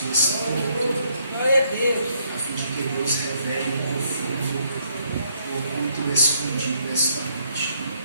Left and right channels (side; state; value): both; inverted; correlation -0.70